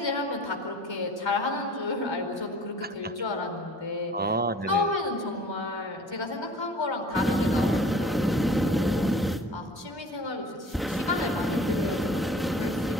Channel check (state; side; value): normal; both; correlation 0.46